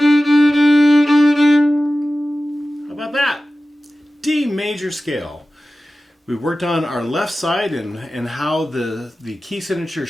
D major scale. We worked on our left side and how the key signature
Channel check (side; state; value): both; normal; correlation 0.95